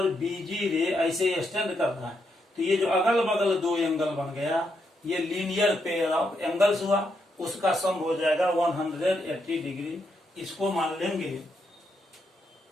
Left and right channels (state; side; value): normal; both; correlation 0.80